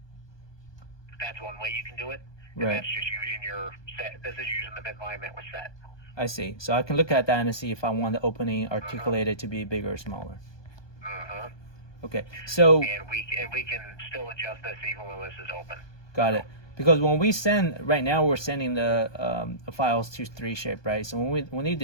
That's one way you can do it. Right. That's just using your set. This is using the midline that was set. I see. So I can look at that and see if I want the opening articulated to be bigger or smaller. Okay. So. And we can still adjust this even when this is open. Got it. Because when we send, right now we're sending the files to 3shape, right? So when we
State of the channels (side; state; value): right; late; 1.2 ms